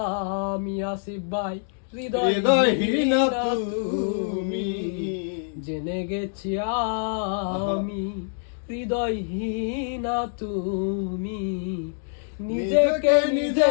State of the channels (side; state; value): right; silent; digital silence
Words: আমি আসিফ ভাই, হৃদয়হীন তুমি। জেনে গেছি আমি হৃদয়হীন তুমি। নিজেকে